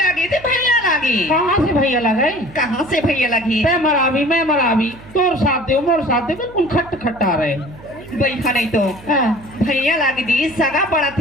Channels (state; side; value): noise; right; hum, 20 dB below the sound